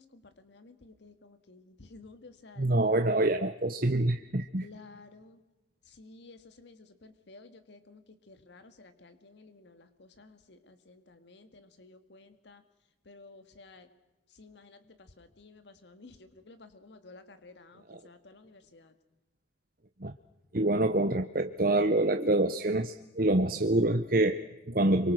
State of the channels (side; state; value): both; normal; correlation 0.33